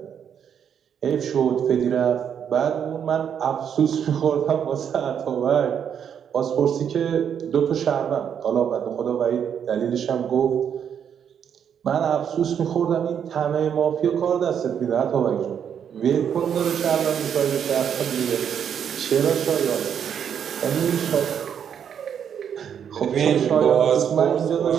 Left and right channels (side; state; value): left; quieter; 8.3 dB